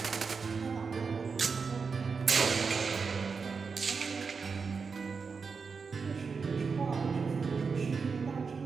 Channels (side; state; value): left; quieter; 5.2 dB